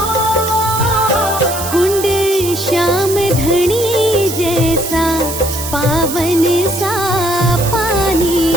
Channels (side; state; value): right; noise; hiss, 7 dB below the sound